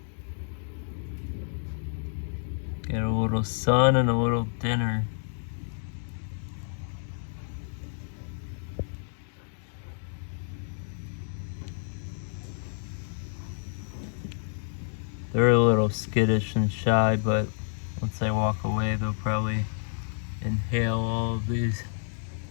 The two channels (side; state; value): right; silent; digital silence